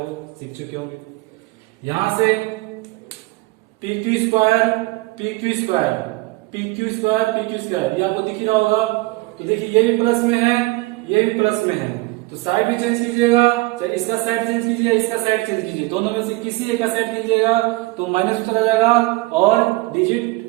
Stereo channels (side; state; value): left; quieter; 21.8 dB